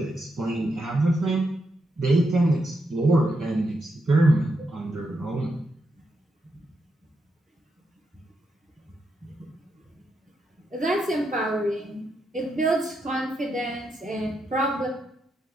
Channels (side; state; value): both; normal; correlation 0.83